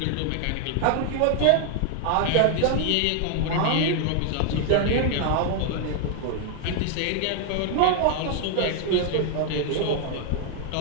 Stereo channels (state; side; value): different; both; correlation 0.00